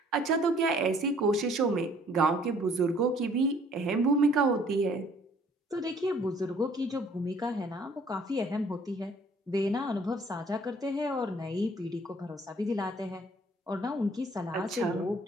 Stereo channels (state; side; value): normal; both; correlation 0.58